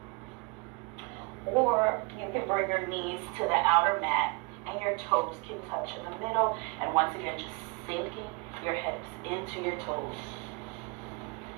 or you can bring your knees to the outer mat and your toes can touch in the middle, and once again just sinking your hips into your toes.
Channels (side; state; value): left; quieter; 29.8 dB